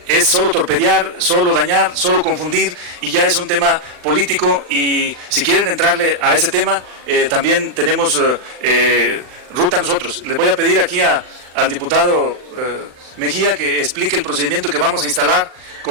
es solo torpedear, solo dañar, solo confundir, y ya es un tema político, y si quieren entrarle a ese tema, también tenemos ruta nosotros. Le voy a pedir aquí al diputado Mejía que explique el procedimiento que vamos a instalar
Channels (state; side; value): late; left; 39 ms